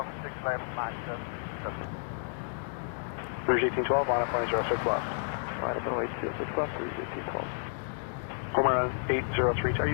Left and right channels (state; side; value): silent; right; digital silence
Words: 6 left, Max Rouge 1812, line up runway 06 left. Line up runway 06 left, Rouge 1812. Homer 803, I